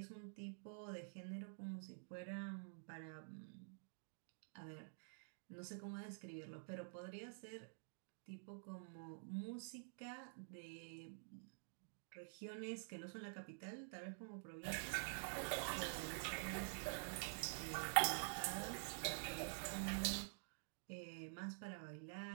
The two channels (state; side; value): silent; left; digital silence